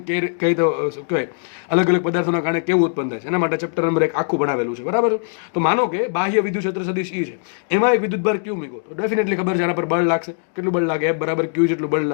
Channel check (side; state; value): right; silent; digital silence